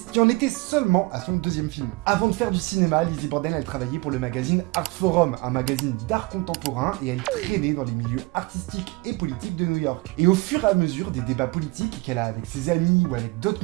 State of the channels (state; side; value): quieter; left; 23.3 dB